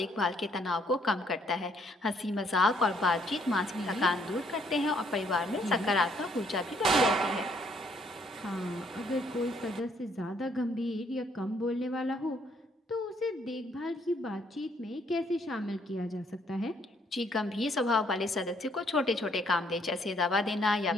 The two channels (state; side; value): normal; both; correlation 0.67